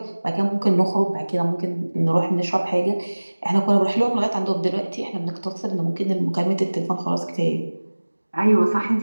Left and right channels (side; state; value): both; inverted; correlation -1.00